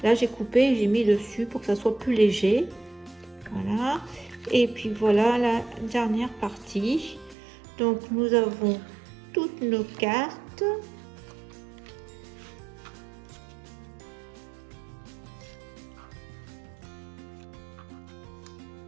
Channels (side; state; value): left; drops out; at 7.4 s